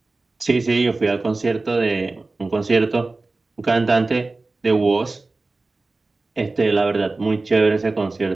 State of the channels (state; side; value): quieter; left; 3.4 dB